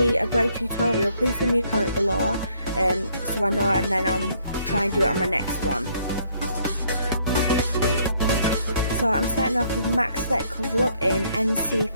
a brow tutorial, please leave me a comment below so I know, and then I'll try and do it on my next one. So I'm starting off with MAC Select Cover Up in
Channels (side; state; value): both; inverted; correlation -0.67